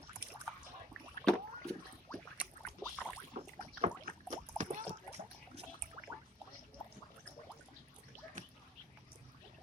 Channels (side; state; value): both; normal; correlation 0.57